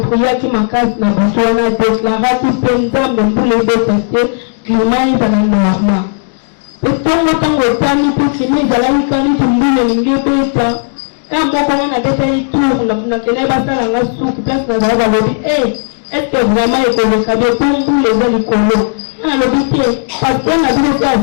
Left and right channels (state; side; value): silent; right; digital silence